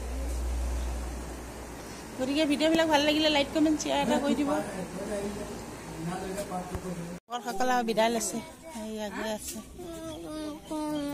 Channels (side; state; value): both; identical; correlation 1.00